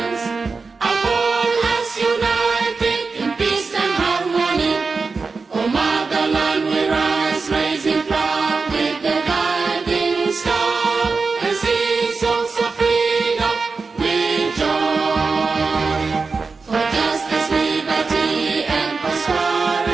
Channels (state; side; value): quieter; left; 4.4 dB